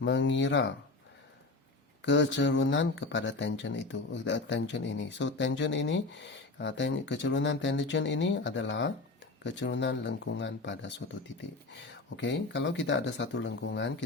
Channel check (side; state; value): right; quieter; 3.4 dB